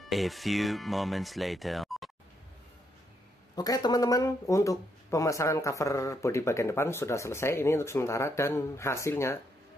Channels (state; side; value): normal; both; correlation 0.77